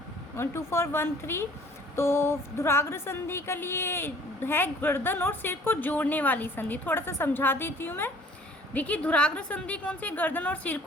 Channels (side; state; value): both; normal; correlation 0.53